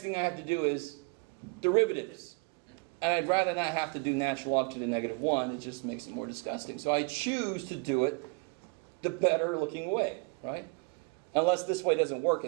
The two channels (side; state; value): left; quieter; 33.3 dB